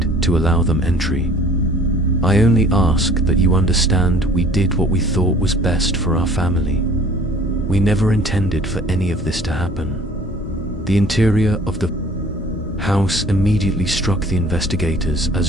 to allow them entry. "I only ask that you understand we did what we thought was best for our family. We never intended for any of this to happen." The interior of the house immediately struck the investigators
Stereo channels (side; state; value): both; normal; correlation 0.51